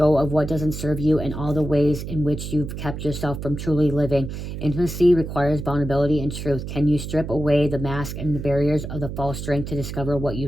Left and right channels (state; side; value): noise; right; hum, 7 dB below the sound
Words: of what doesn't serve you and all the ways in which you've kept yourself from truly living. Intimacy requires vulnerability and truth. Can you strip away the mask and the barriers of the false strength to discover what